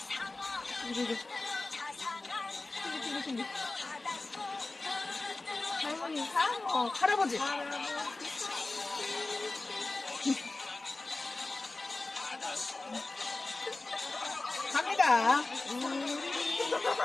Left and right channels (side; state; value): right; quieter; 3.2 dB